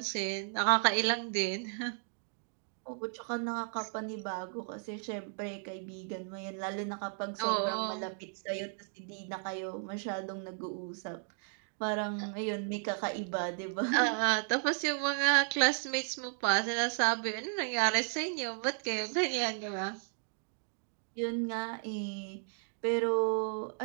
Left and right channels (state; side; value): silent; left; 55 dB below the other